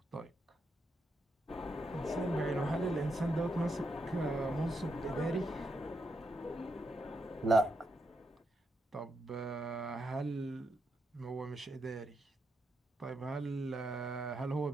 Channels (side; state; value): both; normal; correlation 0.82